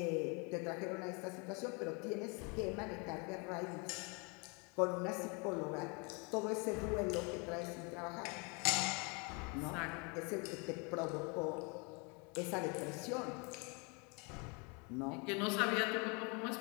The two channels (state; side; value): quieter; right; 32.0 dB